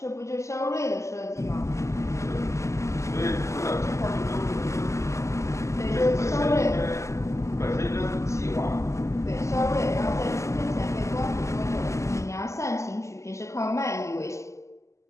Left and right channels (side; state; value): right; late; 0.14 ms